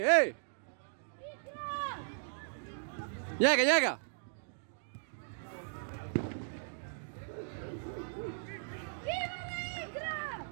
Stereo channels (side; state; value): left; silent; digital silence